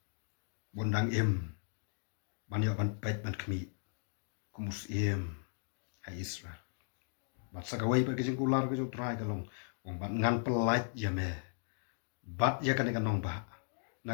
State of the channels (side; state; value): right; silent; digital silence